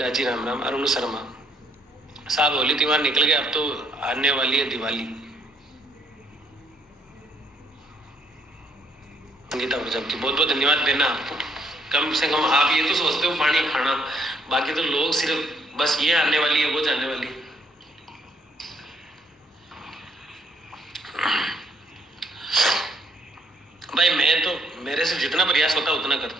जी राम राम। अरुण शर्मा साहब होली त्योहार निकल गया, अब तो आने वाली है दिवाली। संगीता प्रजापति बहुत बहुत धन्यवाद देना आपको। कम से कम आप ये तो सोचते हो पानी खाना, बाकी तो लोग सिर्फ बस ये आने वाली है वो जाने वाली है। भाई मैं तो मेरे से जितना प्रयास होता है उतना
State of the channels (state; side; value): normal; both; correlation 0.69